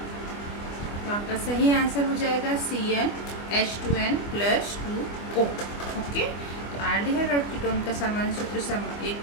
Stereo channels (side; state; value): right; late; 24 ms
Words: तो आपका सही आंसर हो जाएगा CnH2n+2O। ओके, तो आल्डिहाइड और कीटोन का सामान्य सूत्र एक